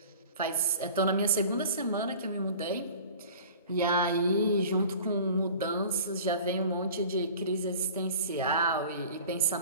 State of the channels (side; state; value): both; inverted; correlation -0.43